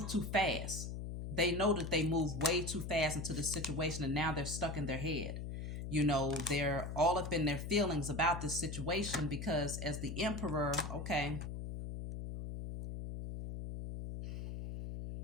too fast. They know that they move way too fast into the situation, and now they're stuck in their head. You know, they're all up in their feelings about this situation because as the Emperor, okay,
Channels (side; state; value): left; noise; hum, 6 dB below the sound